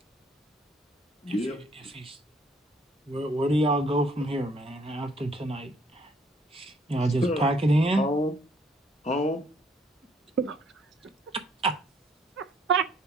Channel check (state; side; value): normal; both; correlation 0.64